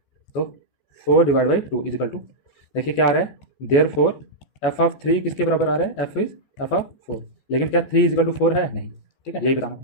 तो 4 / 2 = 2। देखिए क्या आ रहा है, देयरफॉर f ऑफ 3 किसके बराबर आ रहा है, f इज f ऑफ 4। लेकिन क्या 3 = 4 है, नहीं, ठीक है, यही बताना।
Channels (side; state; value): right; late; 14 ms